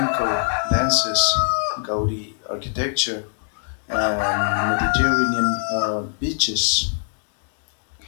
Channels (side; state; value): right; silent; digital silence